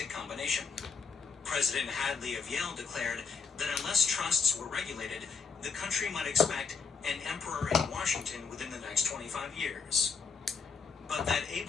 combination. President Hadley of Yale declared that unless trusts were regulated, the country might expect an emperor in Washington within the next 25 years. But that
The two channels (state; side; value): quieter; right; 5.4 dB